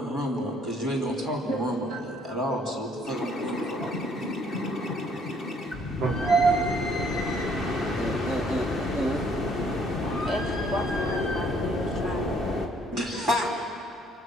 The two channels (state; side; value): normal; both; correlation 0.63